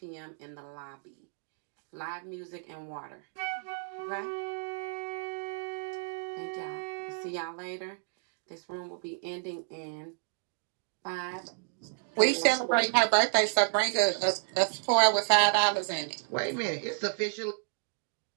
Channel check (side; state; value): left; silent; digital silence